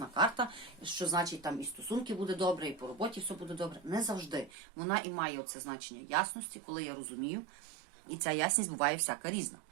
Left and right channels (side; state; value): left; drops out; at 4.5 s